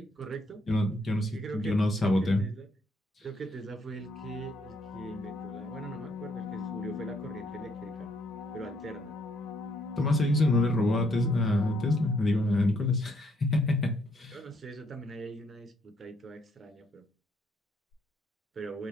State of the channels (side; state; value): both; normal; correlation 0.71